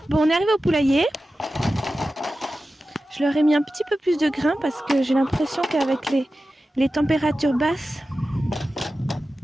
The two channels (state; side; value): normal; both; correlation 0.94